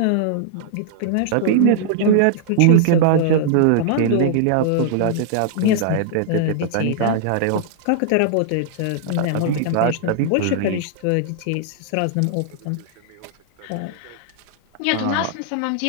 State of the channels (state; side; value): different; both; correlation -0.01